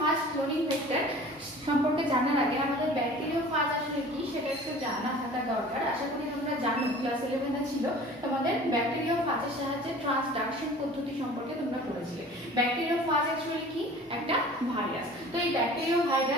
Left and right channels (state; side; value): normal; both; correlation 0.44